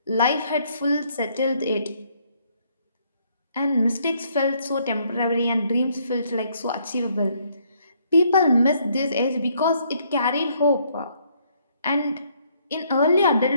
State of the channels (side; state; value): both; inverted; correlation -0.68